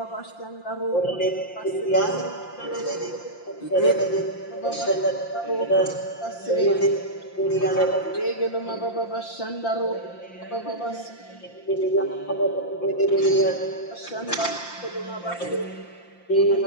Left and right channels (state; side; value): late; right; 5.8 ms